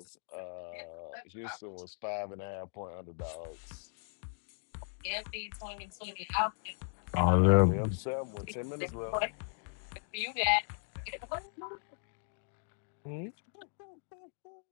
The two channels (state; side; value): silent; right; digital silence